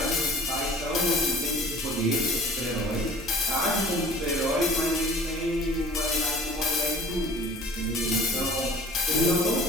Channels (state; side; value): normal; both; correlation 0.47